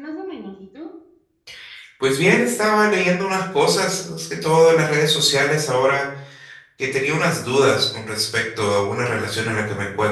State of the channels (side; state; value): both; identical; correlation 1.00